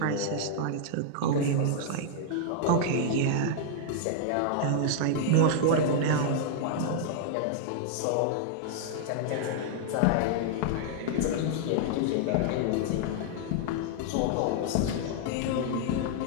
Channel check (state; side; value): different; both; correlation -0.01